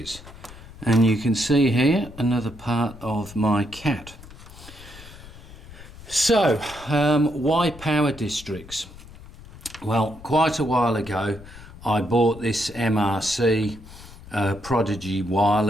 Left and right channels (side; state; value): left; noise; rumble, 18 dB below the sound